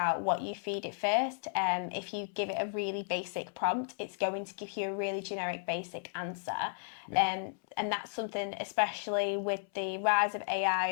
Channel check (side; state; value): right; silent; 55 dB below the other